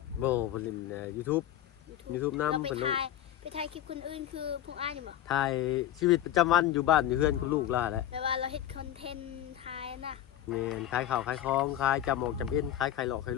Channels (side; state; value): right; quieter; 11.9 dB